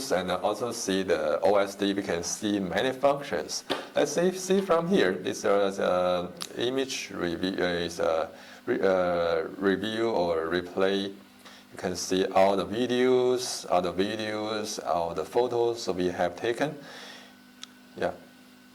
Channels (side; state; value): both; identical; correlation 1.00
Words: and also see the OSD, we can see many functions. Let's see from here. This is image review, review or replay. You can see all the videos, all the photos we have taken. Yeah.